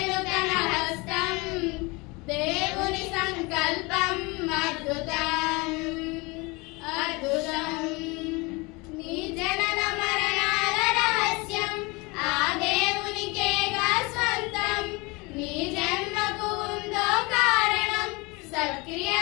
తన హస్తం, దేవుని సంకల్పం అద్భుతం అద్భుతం. నీ జనన మరణాల రహస్యం ఆ దేవునికేగా స్వంతం. నీ జన్మకు ఉందో కారణం,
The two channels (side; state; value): right; quieter; 26.1 dB